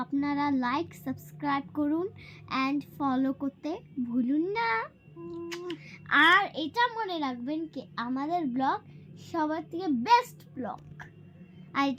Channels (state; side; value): identical; both; correlation 1.00